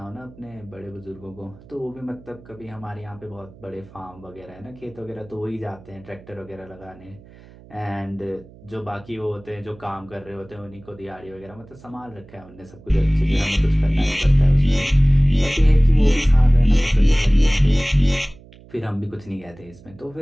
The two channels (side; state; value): right; noise; hum, 22 dB below the sound